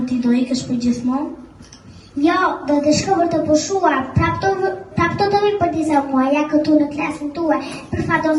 ti do ikësh për gjithmonë? Jo, do të shkoj për të pushuar, prap të do vi për disa muaja këtu në klasën tuaj, për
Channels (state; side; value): identical; both; correlation 1.00